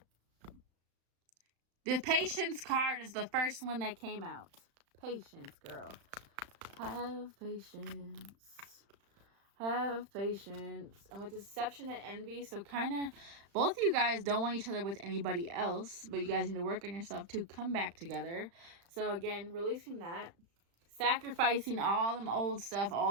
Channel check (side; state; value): left; late; 35 ms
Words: The patience card is the first one that came out. Patience, girl. Have patience. Have patience. And with deception and envy, so kind of both of you guys don't want each other with anybody else, but you guys need to work on yourself to come back together. So again, releasing that. Sacrificing all that